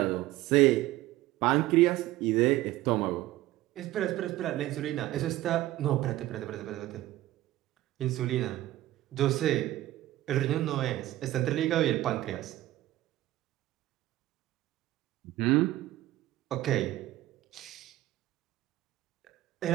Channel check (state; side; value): quieter; left; 15.9 dB